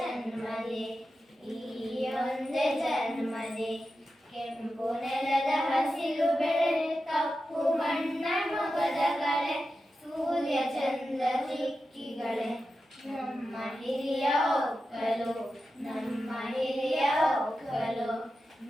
ಈ ಒಂದೇ ಜನ್ಮದಿ ಕೆಂಪು ನೆಲದ ಹಸಿರು ಬೆಳೆ ಕಪ್ಪು ಮಣ್ಣ ಮೊಗದ ಕಳೆ ಸೂರ್ಯ ಚಂದ್ರ ಚಿಕ್ಕಿಗಳೇ ನಮ್ಮ ಹಿರಿಯ ಒಕ್ಕಲು ನಮ್ಮ ಹಿರಿಯ ಒಕ್ಕಲು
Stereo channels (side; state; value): both; normal; correlation 0.91